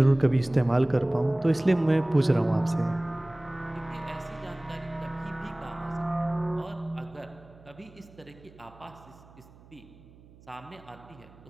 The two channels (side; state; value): right; noise; hum, 24 dB below the sound